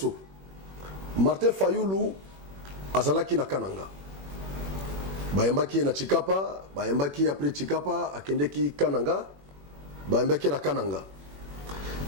Martin Fayulu azalaki na Kananga. Bayembaki na Chikapa, bayembaki après Chikapa akendeki Kananga, bayembaki na Kananga.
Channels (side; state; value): left; late; 21 ms